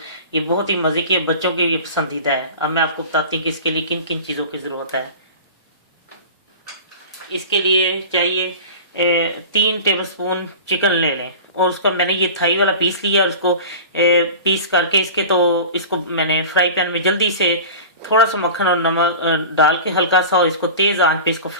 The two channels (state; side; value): inverted; both; correlation -0.36